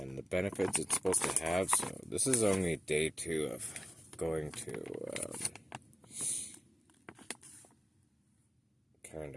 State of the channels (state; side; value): normal; both; correlation 0.96